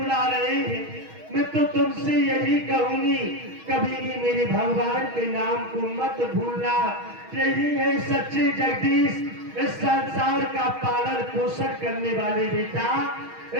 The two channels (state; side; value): late; left; 6.3 ms